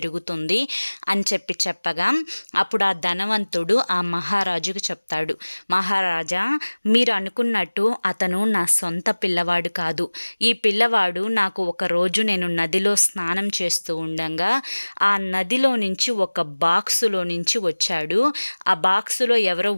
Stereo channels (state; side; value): inverted; both; correlation -1.00